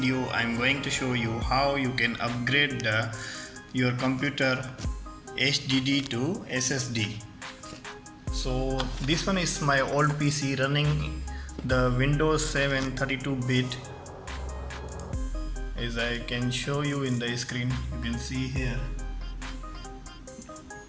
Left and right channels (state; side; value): identical; both; correlation 1.00